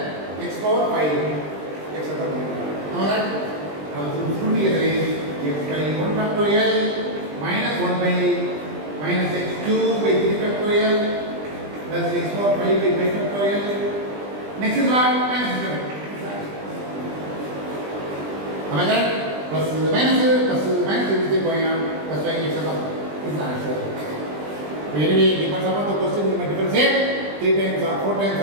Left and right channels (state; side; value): late; left; 20 ms